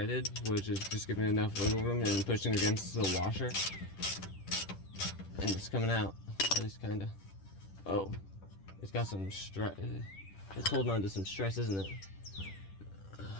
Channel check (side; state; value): right; late; 10 ms